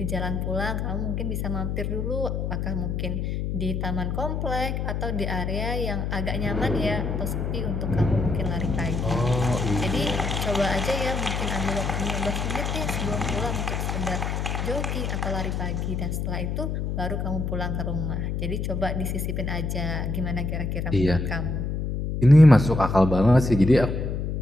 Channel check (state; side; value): noise; left; hum, 1 dB below the sound